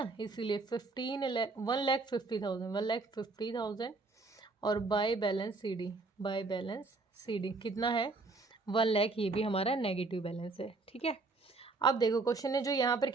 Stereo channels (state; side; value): quieter; left; 3.6 dB